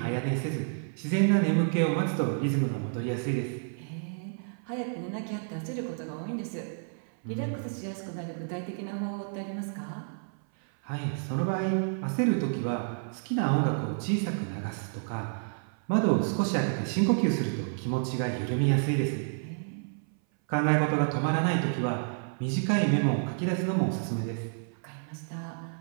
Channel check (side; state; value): left; silent; 57 dB below the other